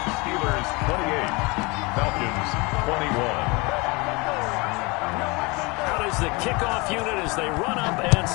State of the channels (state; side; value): quieter; right; 26.5 dB